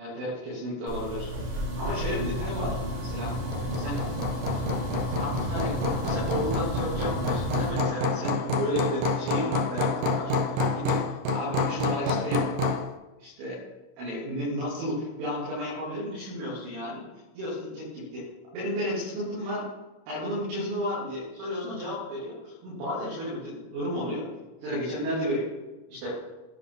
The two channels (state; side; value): late; left; 32 ms